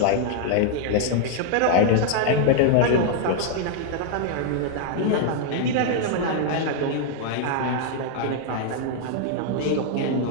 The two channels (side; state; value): both; different; correlation -0.01